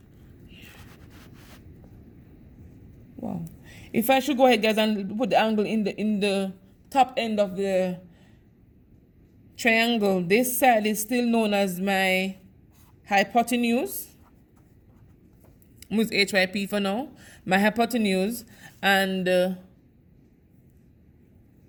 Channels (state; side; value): identical; both; correlation 1.00